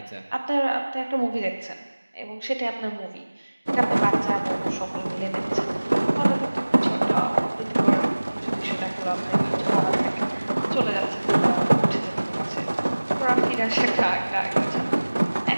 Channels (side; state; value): both; inverted; correlation -1.00